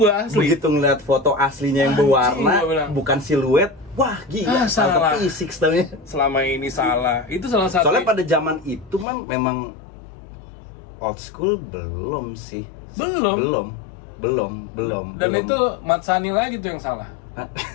asli. Begitu ngeliat foto aslinya yang berwarna, bukan siluet. Wah, gila, salah. Style 36 namanya. Selama ini salah. Itu salah satu. Soalnya pada zaman itu memang old school belum sih. Belum. Dan itu Mat Sani lagi tuh yang salah.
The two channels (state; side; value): drops out; right; at 9.1 s